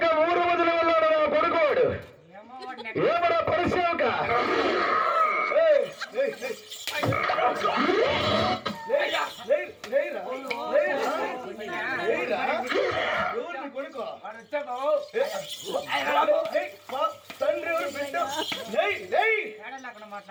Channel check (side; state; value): both; identical; correlation 1.00